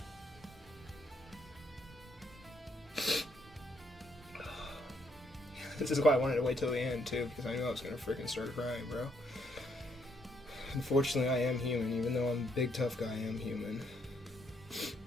This is why I wanted to wait till the end, too, because I knew I was going to freaking start crying, bro. Unfortunately, I am human. Even though I'm a big, tough guy, I am human.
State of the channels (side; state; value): both; normal; correlation 0.72